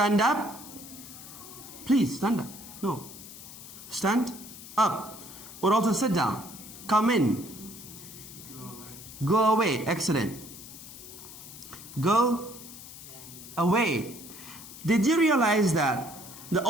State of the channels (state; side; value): noise; left; hiss, 15 dB below the sound